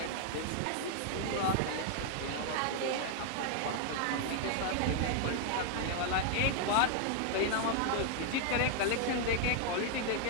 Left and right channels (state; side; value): different; both; correlation 0.00